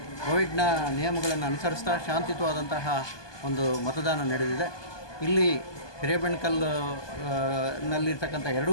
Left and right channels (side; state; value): right; late; 1.2 ms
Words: ಕೋವಿಡ್ನ ನಿಯಮಗಳನ್ನು ಅನುಸರಿಸ್ತಾ ಶಾಂತಿಯುತವಾದಂತಹ ಒಂದು ಮತದಾನ ನಡೆದಿದೆ. ಇಲ್ಲಿ ಹಿರೇಬೆಣಕಲ್ ನಲ್ಲಿರ್ತಕ್ಕಂಥ 2